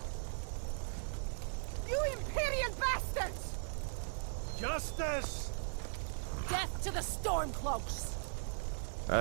You Imperial bastards! Justice! Death to the Stormcloaks!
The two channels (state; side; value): silent; left; 52 dB below the other